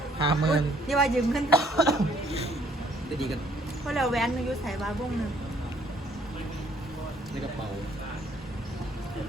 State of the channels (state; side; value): normal; both; correlation 0.63